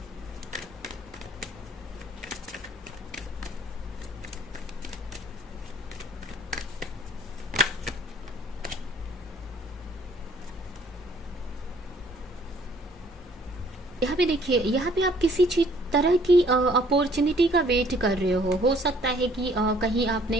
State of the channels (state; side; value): normal; both; correlation 0.59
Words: यहाँ पे देखिए, यहाँ पे आप किसी चीज तरह की अपॉर्चुनिटी का वेट कर रहे हो सकता है कि कहीं आपने